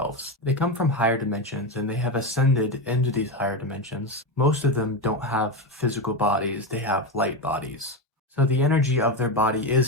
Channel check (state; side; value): normal; both; correlation 0.15